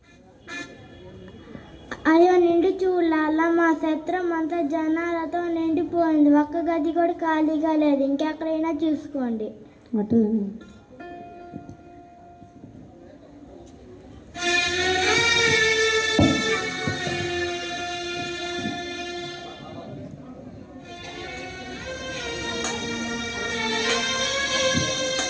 అయ్యో నిండు చూడాల, మా సత్రం అంతా జనాలతో నిండిపోయింది. ఒక్క గది కూడా ఖాళీగా లేదు. ఇంకెక్కడైనా చూసుకోండి. అట్లనే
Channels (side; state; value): both; identical; correlation 1.00